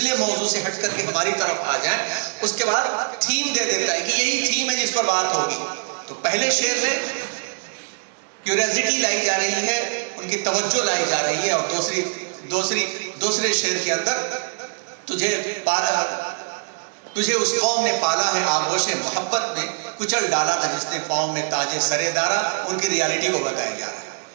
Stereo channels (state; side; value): silent; left; digital silence